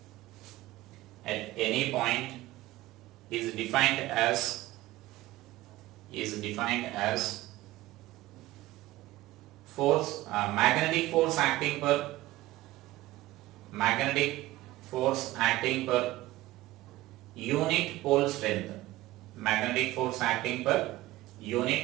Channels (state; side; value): quieter; left; 17.2 dB